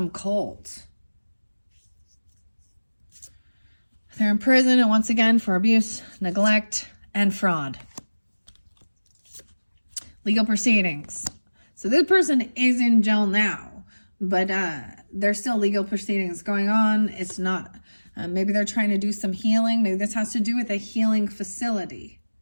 cult. They're in prison, and once again, for abuse, neglect, and fraud. Legal proceedings. So this person is in jail now, but there's still legal proceedings going on. It's not, maybe they're trying to do some healing. Maybe this has to do with a healing facility.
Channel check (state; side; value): inverted; both; correlation -1.00